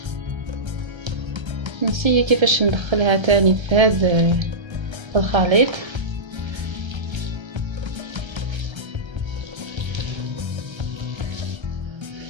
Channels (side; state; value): left; late; 1.3 ms